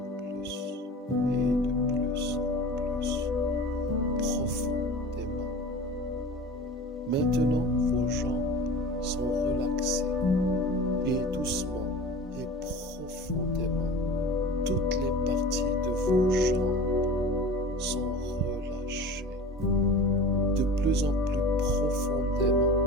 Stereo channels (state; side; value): normal; both; correlation 0.36